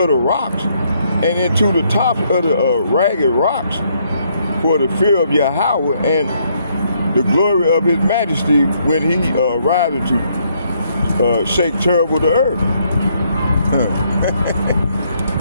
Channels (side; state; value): both; inverted; correlation -0.71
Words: the rocks and into the tops of the ragged rocks for the fear of Yahweh and the glory of his majesty when he rises to shake terrible the earth.